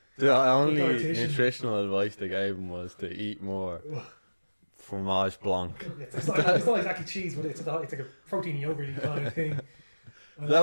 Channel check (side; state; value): both; inverted; correlation -1.00